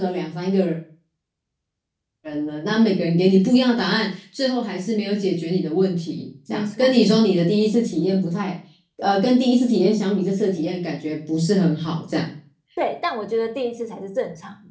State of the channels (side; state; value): both; identical; correlation 1.00